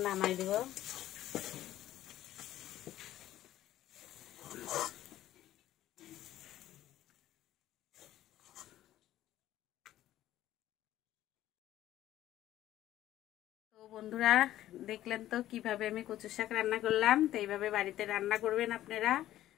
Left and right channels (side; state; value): right; quieter; 13.6 dB